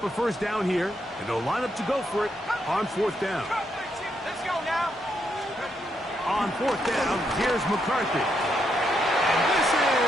a first down here, and they'll line up to go for it on fourth down. Let's go now. On fourth down, here's McCarthy. And this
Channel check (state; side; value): normal; both; correlation 0.79